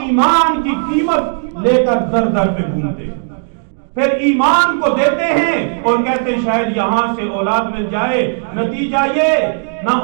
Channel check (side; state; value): left; silent; 68 dB below the other